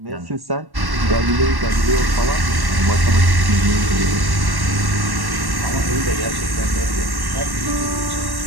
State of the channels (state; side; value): late; left; 1.1 ms